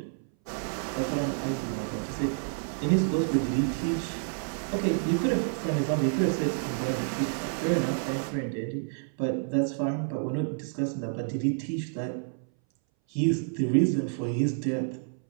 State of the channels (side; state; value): left; silent; 59 dB below the other